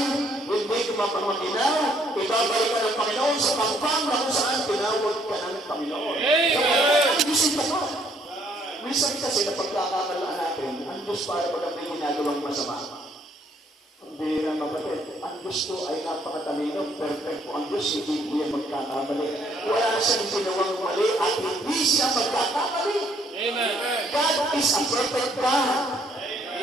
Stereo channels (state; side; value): normal; both; correlation 0.66